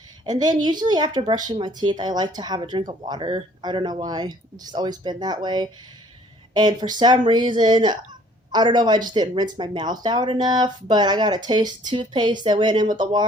And then usually after brushing my teeth, I like to have a drink of water. I don't know why. It's just always been that way. And for some reason, I don't know if I just didn't rinse my mouth out enough, but I got a taste of toothpaste that went in with the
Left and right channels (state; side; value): normal; both; correlation 0.57